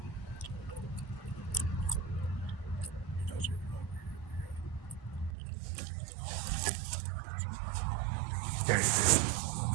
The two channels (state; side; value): drops out; left; at 5.4 s